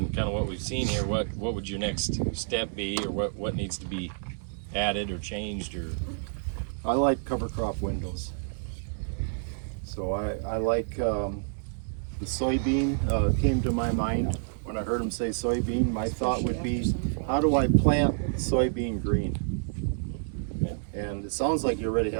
kind of what we've seen here, what would your next step be, or what needs to be added or changed, or? I like cover crop windows. So I like the soybean came to my mind when I heard him say soybean. My thought would be, how do I plant soybean green? And it sounds like you already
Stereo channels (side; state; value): left; silent; digital silence